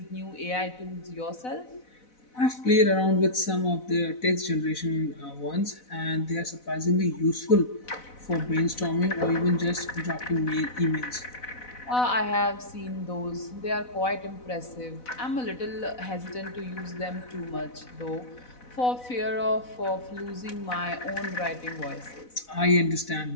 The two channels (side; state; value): right; late; 4.0 ms